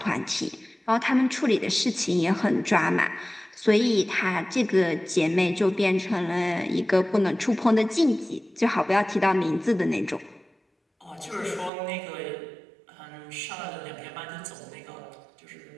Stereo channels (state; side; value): drops out; left; at 11.7 s